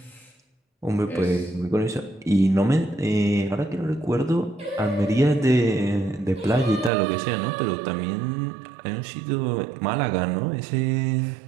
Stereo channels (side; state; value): left; drops out; at 6.9 s